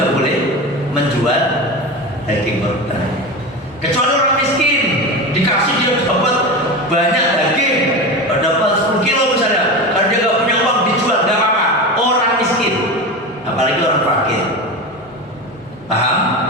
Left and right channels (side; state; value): both; normal; correlation 0.24